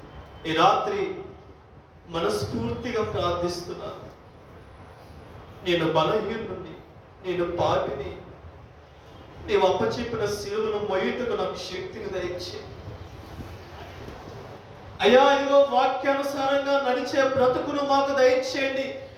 ఈ రాత్రి మనస్ఫూర్తిగా ప్రార్థిస్తున్నాను. నేను బలహీనుడిని, నేను పాపిని. నీవు అప్పచెప్పిన శిలువను మొయ్యుటకు నాకు శక్తిని దయచేయి. అయ్యా ఇదిగో వాక్యానుసారంగా నడిచే బ్రతుకును మాకు దయచేయండి.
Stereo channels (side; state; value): both; identical; correlation 1.00